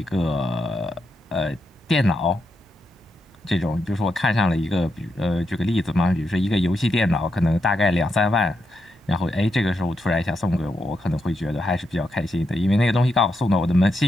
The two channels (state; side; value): normal; both; correlation 0.84